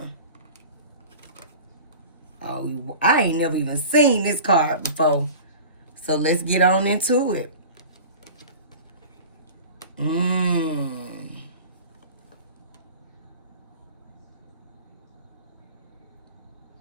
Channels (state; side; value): inverted; both; correlation -0.37